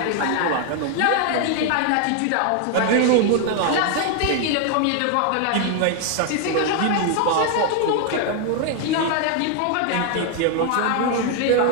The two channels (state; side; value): different; both; correlation 0.00